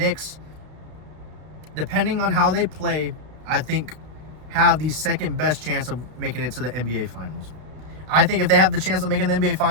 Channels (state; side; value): late; left; 33 ms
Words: depending on how they play, I think have the second best chance of making it to the NBA Finals. I think if they have the chance of making the NBA